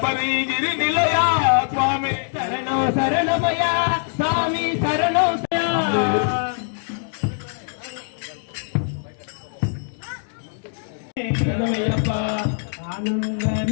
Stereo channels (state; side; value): silent; right; digital silence